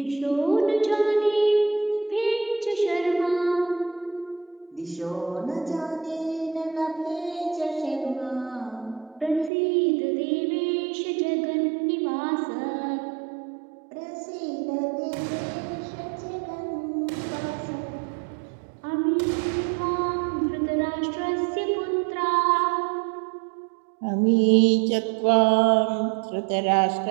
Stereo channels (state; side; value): drops out; left; at 9.5 s